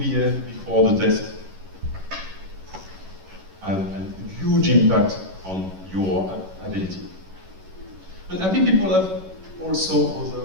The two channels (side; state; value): left; late; 11 ms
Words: before the test have a huge impact on your ability. And happy people have also